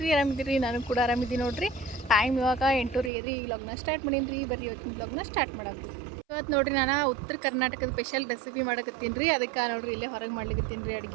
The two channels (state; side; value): drops out; left; at 3.1 s